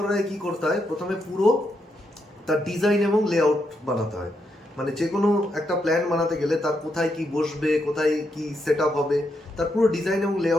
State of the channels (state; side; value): normal; both; correlation 0.80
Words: আগে কী করতে হয়? প্রথমে পুরো তার ডিজাইন এবং লেআউট বানাতে হয়। মানে যে কোনো একটা প্ল্যান বানাতে গেলে তার কোথায় কি বসবে, কোথায় কি সেট আপ হবে, তার পুরো ডিজাইন এবং